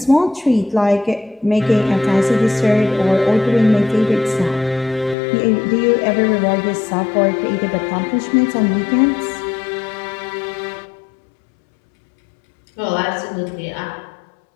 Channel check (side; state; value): right; drops out; at 5.2 s